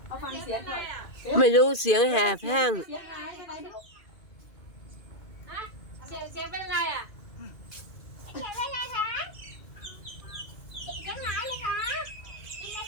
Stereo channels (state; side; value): late; right; 2.5 ms